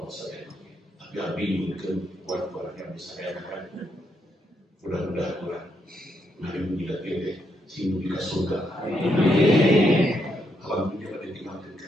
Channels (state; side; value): normal; both; correlation 0.78